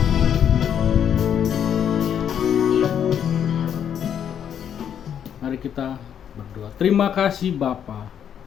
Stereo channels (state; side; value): quieter; right; 8.9 dB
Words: Mari kita berdoa. Terima kasih Bapa.